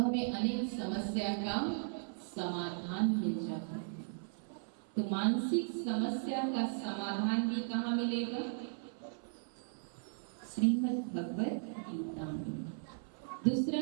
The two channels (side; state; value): left; silent; 53 dB below the other